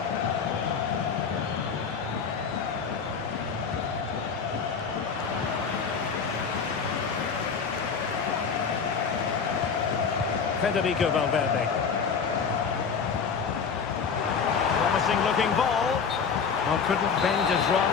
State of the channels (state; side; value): quieter; right; 6.0 dB